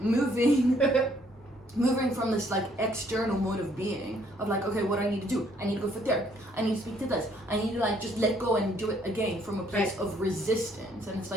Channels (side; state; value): both; normal; correlation 0.65